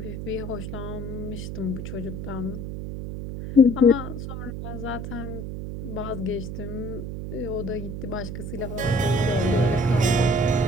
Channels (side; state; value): right; noise; hum, 6 dB below the sound